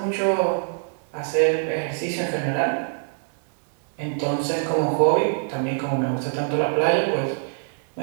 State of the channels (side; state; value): left; silent; digital silence